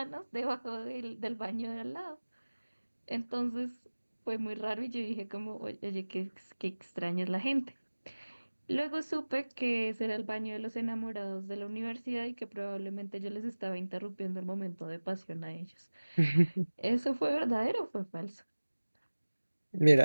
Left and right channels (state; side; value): inverted; both; correlation -1.00